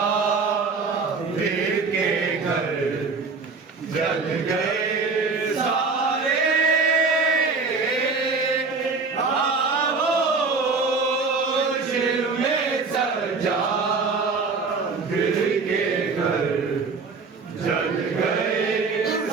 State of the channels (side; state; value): left; quieter; 4.4 dB